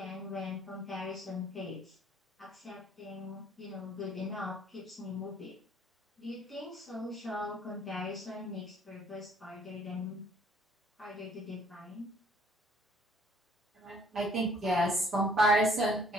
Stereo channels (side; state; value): both; normal; correlation 0.60